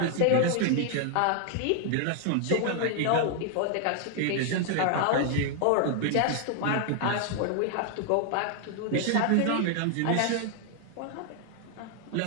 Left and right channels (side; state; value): both; different; correlation 0.00